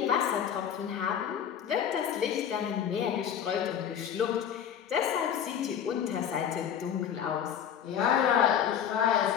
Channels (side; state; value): right; quieter; 8.8 dB